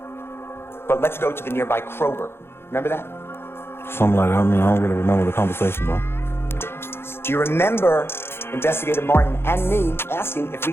but let's go to the nearby Kroger. Remember that? Something like that. I mean, I don't really remember the conversation though. Do you remember Investigator Martin and me asking if we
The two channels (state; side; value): late; right; 0.11 ms